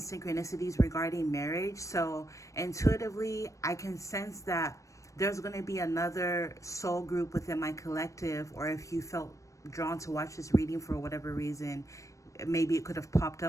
regarding marriage. So intuitively, I can sense that there's going to be another soul group within my collective, or if you felt drawn to watch this reading for whatever reason, maybe it could have popped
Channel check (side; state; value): right; late; 0.15 ms